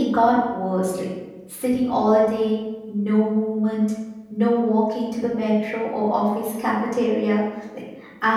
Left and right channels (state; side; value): identical; both; correlation 1.00